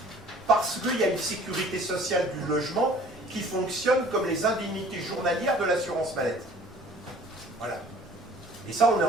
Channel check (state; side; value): normal; both; correlation 0.51